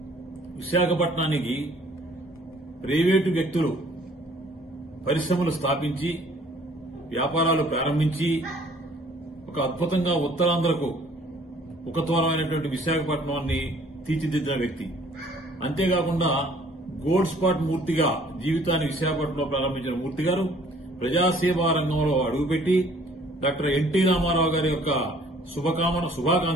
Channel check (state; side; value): normal; both; correlation 0.57